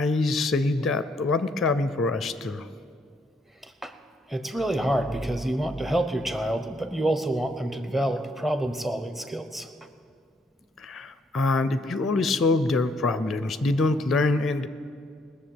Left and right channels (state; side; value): normal; both; correlation 0.71